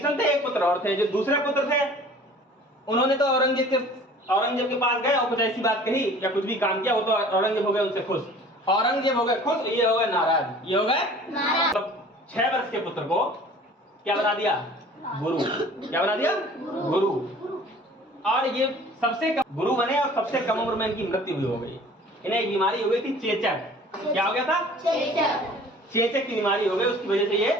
थे, एक पुत्र और थे। जो दूसरे पुत्र थे उन्होंने तो औरंगजेब के पास गए और कुछ ऐसी बात कही या कुछ भी काम किया, वो तो औरंगजेब हो गए उनसे खुश, औरंगजेब हो गए खुश, ये हो गए नाराज, ये हो गए नाराज। तो 6 वर्ष के पुत्र को क्या बना दिया? गुरु। क्या बना दिया? गुरु। और ये सबसे कम गुरु बने और सबसे कम उम्र में इनकी मृत्यु भी हो गई। इन्हें एक बीमारी हो गई थी, चेचक। क्या हो गया था? चेचक की बीमारी हो गई, उसकी वजह से ये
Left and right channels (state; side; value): normal; both; correlation 0.47